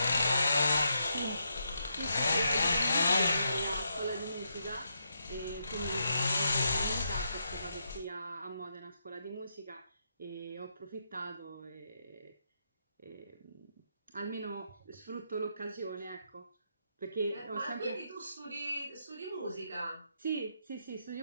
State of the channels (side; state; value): both; inverted; correlation -0.80